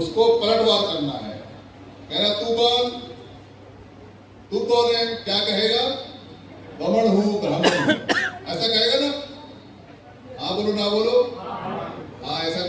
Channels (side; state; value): both; identical; correlation 1.00